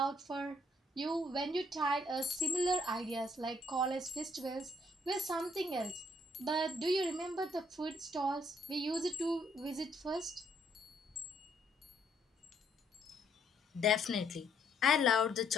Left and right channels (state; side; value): normal; both; correlation 0.68